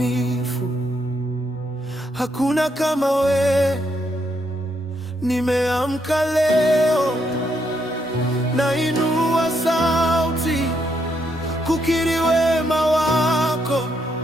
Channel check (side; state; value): both; normal; correlation 0.77